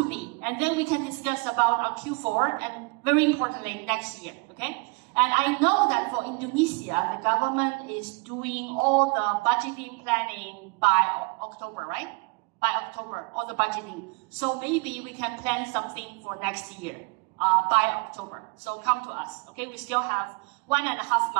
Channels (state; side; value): quieter; left; 30.1 dB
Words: me, and then we can discuss about our Q4 and very importantly next year, okay? And I know that for Indonesia, the government is doing all the budgeting planning by October, right? By October, all the budgeting. So maybe we can plan something for next year by October. So come to us, okay? We still have 1.5